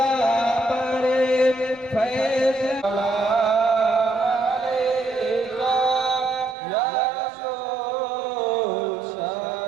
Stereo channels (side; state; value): left; drops out; at 6.6 s